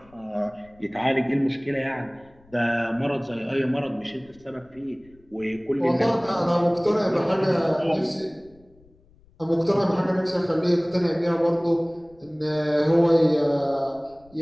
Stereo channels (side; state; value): left; noise; rumble, 29 dB below the sound